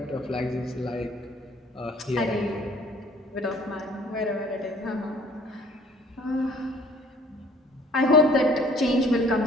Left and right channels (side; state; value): both; normal; correlation 0.55